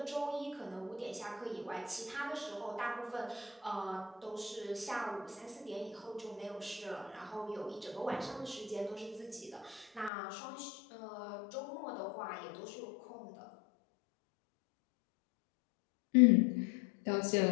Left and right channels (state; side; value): drops out; right; at 10.1 s